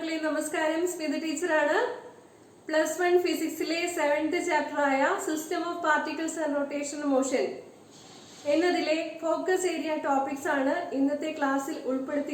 നമസ്കാരം. സ്മിത ടീച്ചറാണ്. +1 ഫിസിക്സിലെ 7th ചാപ്റ്റർ ആയ system of particles and rotation motion എന്നതിലെ ഫോക്കസ് ഏരിയ ടോപ്പിക്സ് ആണ് ഇന്നത്തെ ക്ലാസ്സിൽ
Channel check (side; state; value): both; identical; correlation 1.00